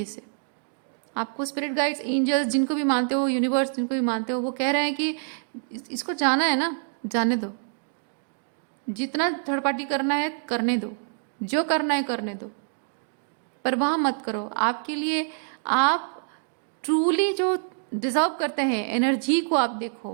इसे। आपको स्पिरिट गाइड्स, एंजल्स, जिनको भी मानते हो, यूनिवर्स जिनको भी मानते हो, वो कह रहे हैं कि इसको जाना है ना, जाने दो। जितना थर्ड पार्टी करना है करने दो, जो करना है करने दो, पर वहाँ मत करो। आपके लिए आप ट्रूली जो डिजर्व करते हैं एनर्जी को आप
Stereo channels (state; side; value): silent; left; digital silence